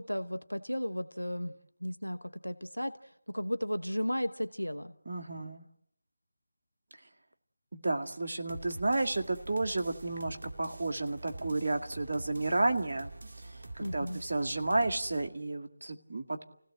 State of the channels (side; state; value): both; inverted; correlation -0.96